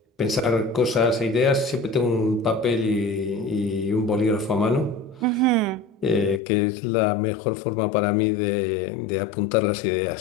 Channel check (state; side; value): drops out; right; at 6.4 s